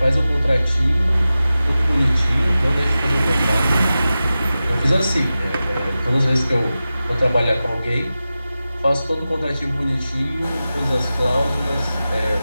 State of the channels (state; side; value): inverted; both; correlation -0.94